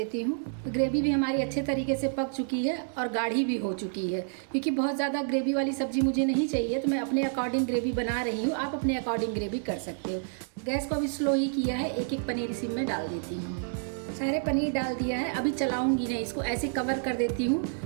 हूँ। तो ग्रेवी भी हमारी अच्छे तरीके से पक चुकी है और गाढ़ी भी हो चुकी है। क्योंकि बहुत ज़्यादा ग्रेवी वाली सब्ज़ी मुझे नहीं चाहिए तो मैं अपने अकॉर्डिंग ग्रेवी बना रही हूँ। आप अपने अकॉर्डिंग ग्रेवी कर सकते हो। गैस को अभी स्लो ही किया है। एक एक पनीर इसी में डाल देती हूँ। सारे पनीर डाल दिया है। अभी चलाऊंगी नहीं, इसको ऐसे कवर कर देती हूँ।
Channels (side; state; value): left; silent; digital silence